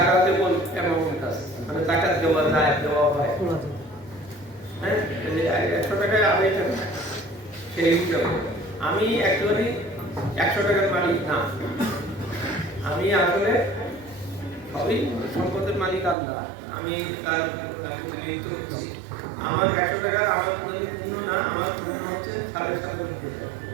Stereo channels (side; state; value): left; drops out; at 16.2 s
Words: অ্যামাউন্ট আছে, মানে যাকাত দেওয়া যায়, দেওয়া হয়। হ্যাঁ, 100 টাকায় 2.5 টাকা সেই হিসাবে আমি অ্যাকচুয়ালি 100 টাকার মালিক না, আমি আসলে সবই সম্পদের মালিক আল্লাহ, আমি তার প্রতিনিধিত্ব করছি। আমার 100 টাকার আমার যদি পূর্ণ না, আমার পূর্ণ হচ্ছে 97.5 টাকা,